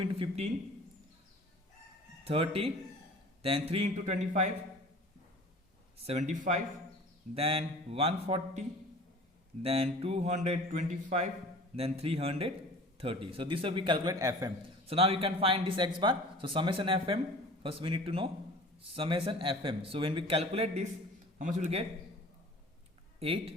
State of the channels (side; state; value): both; normal; correlation 0.43